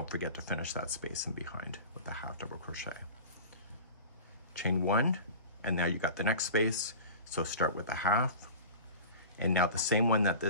forget to finish that space in behind with the half double crochet. Chain 1, and now you got the next space, so start with the half, and now the same one that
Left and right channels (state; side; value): inverted; both; correlation -0.36